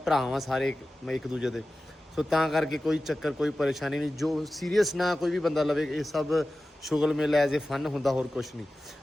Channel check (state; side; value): normal; both; correlation 0.95